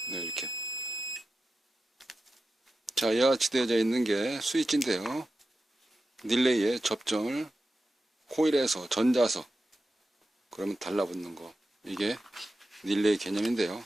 네, 이렇게. 자, 이와 같이 되어져 있는 게 스위치인데요. 릴레이에 접점을 코일에서 전자석, 그러면 달라붙는 거. 이게 릴레이 개념인데요.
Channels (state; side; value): normal; both; correlation 0.92